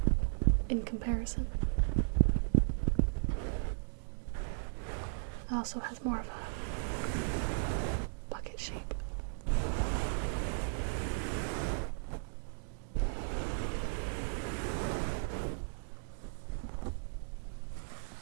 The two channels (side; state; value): left; silent; digital silence